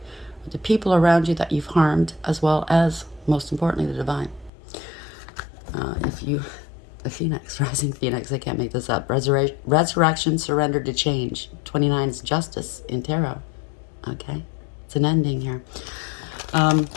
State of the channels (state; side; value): drops out; right; at 4.5 s